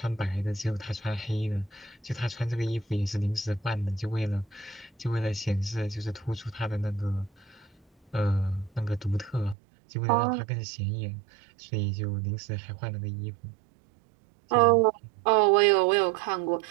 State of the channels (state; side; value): drops out; left; at 9.6 s